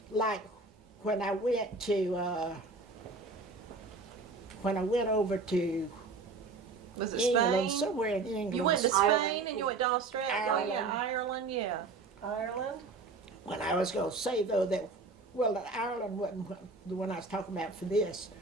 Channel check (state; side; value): quieter; left; 3.8 dB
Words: Like when I went over to Was it England, Spain? somewhere in England. You went to Ireland. Spain and you went to Australia. Ireland. Yeah, Ireland, yeah. Ireland? When I was going to say though that, well, Ireland wasn't the one I was talking about for this.